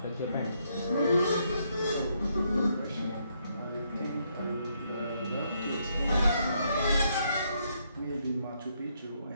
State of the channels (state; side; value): inverted; both; correlation -0.75